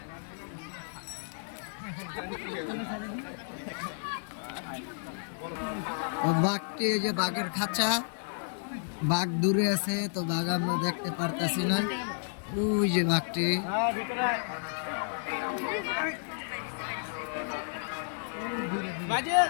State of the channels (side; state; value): right; silent; 57 dB below the other